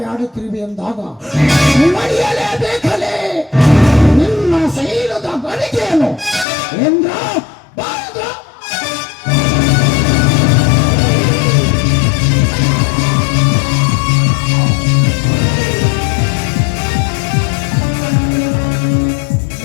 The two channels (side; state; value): right; drops out; at 6.5 s